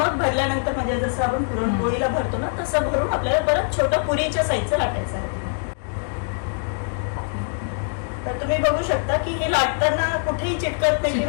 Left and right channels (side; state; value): right; silent; 63 dB below the other